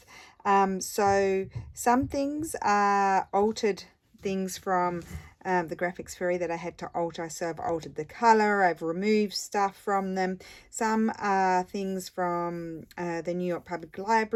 So some things are altered things from the graphics fairy that I had to alter. So I've altered the color, I've removed stuff from them. Some are things from the New York Public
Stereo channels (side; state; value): both; identical; correlation 1.00